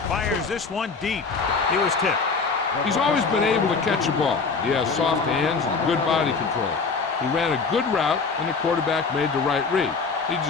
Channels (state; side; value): quieter; right; 4.8 dB